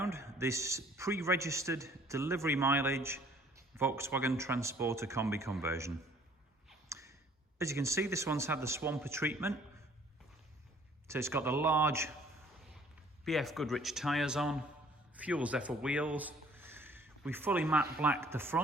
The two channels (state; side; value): normal; both; correlation 0.57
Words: this pre-registered delivery mileage Volkswagen Transporter Kombi Conversion. As you can see, this one's had the swamper treatment. So it's got the large BF Goodrich tyres on, fuel Zephyr wheels. We fully matte blacked the